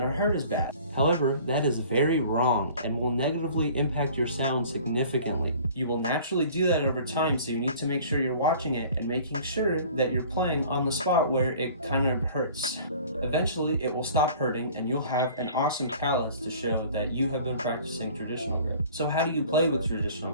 to hurt as bad. However, that is very wrong and will negatively impact your sound significantly. You will naturally do that over time, so you need to make sure you're watching it and making sure that you're playing on the spot where it kind of hurts. Eventually, it will stop hurting and you'll have an awesome callus to show that you have been practicing traditional grip. So how do you play with traditional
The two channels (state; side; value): inverted; both; correlation -0.48